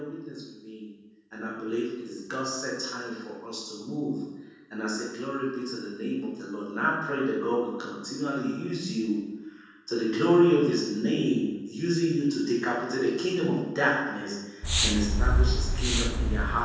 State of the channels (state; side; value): identical; both; correlation 1.00